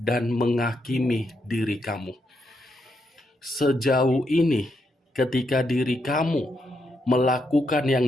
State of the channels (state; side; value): normal; both; correlation 0.80